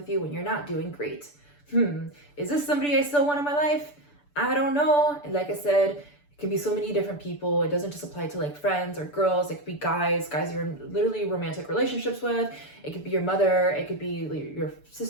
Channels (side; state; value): right; late; 6.9 ms